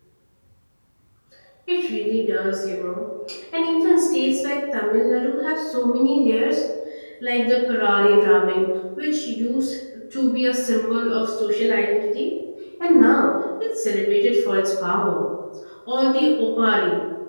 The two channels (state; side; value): inverted; both; correlation -1.00